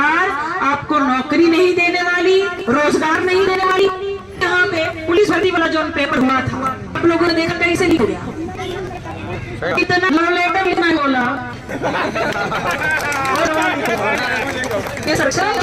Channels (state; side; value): identical; both; correlation 1.00